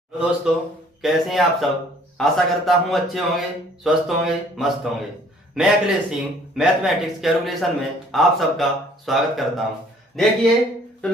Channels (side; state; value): both; normal; correlation 0.58